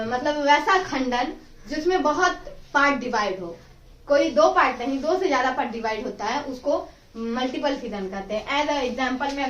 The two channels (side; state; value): both; identical; correlation 1.00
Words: मतलब वैसा खंडन जिसमें बहुत पार्ट डिवाइड हो, कोई 2 पार्ट नहीं 2 से ज्यादा पार्ट डिवाइड होता है, उसको मल्टीपल फिजन कहते हैं। एज एग्जाम्पल में